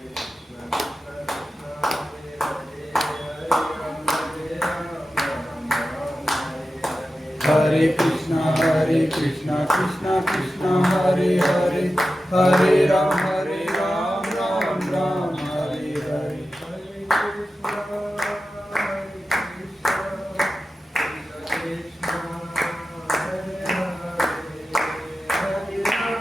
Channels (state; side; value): normal; both; correlation 0.93